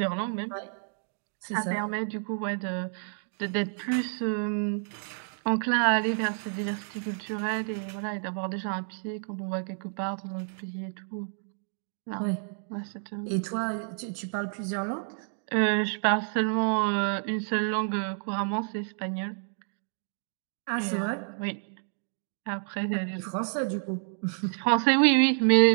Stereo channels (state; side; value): silent; left; 58 dB below the other